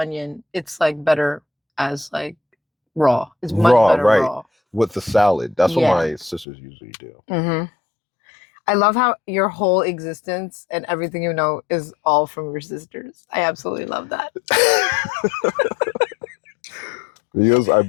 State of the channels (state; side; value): drops out; right; at 6.5 s